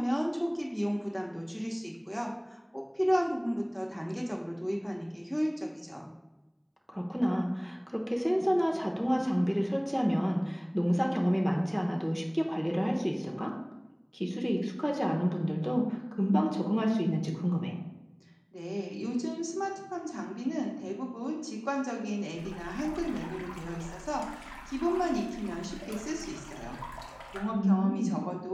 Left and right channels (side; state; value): both; identical; correlation 1.00